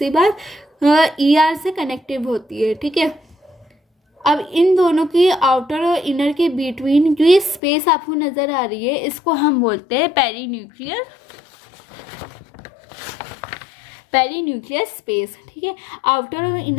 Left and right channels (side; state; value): right; drops out; at 7.6 s